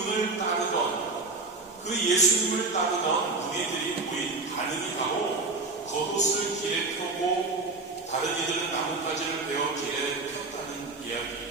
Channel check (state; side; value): quieter; left; 3.5 dB